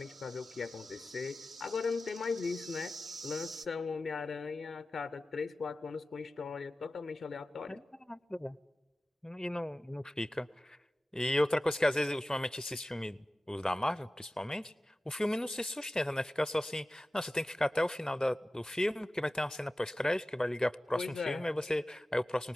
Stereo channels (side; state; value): both; normal; correlation 0.95